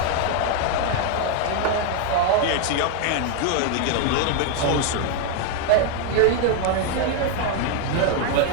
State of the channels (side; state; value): both; different; correlation 0.01